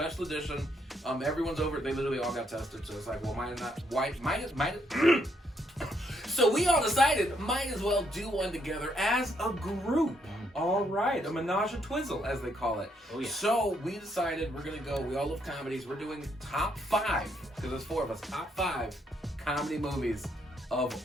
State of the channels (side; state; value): both; normal; correlation 0.74